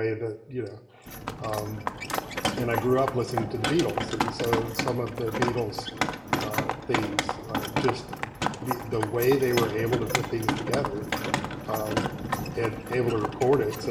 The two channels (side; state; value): both; identical; correlation 1.00